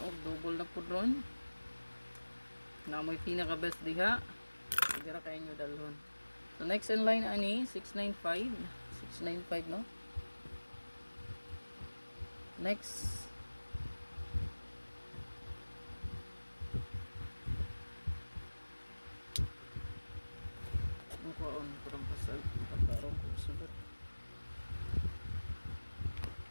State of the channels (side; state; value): both; inverted; correlation -1.00